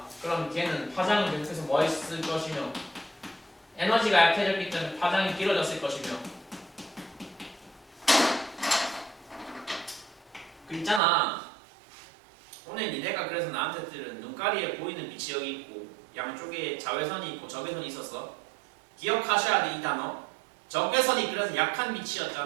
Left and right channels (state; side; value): drops out; left; at 11.0 s